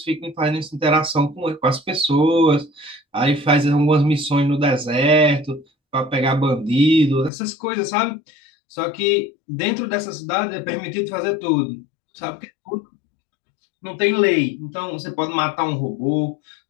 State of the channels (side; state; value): right; drops out; at 7.3 s